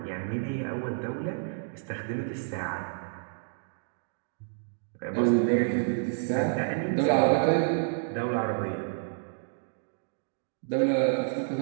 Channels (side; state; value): left; silent; digital silence